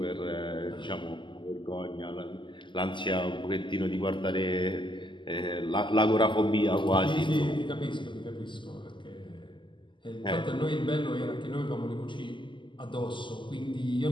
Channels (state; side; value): late; right; 0.24 ms